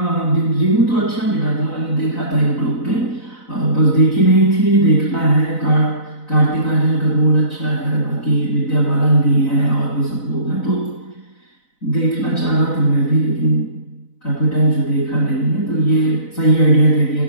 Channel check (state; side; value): late; right; 4.0 ms